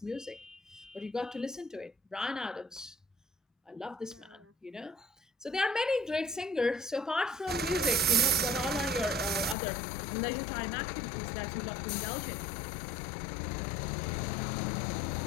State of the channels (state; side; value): drops out; right; at 9.6 s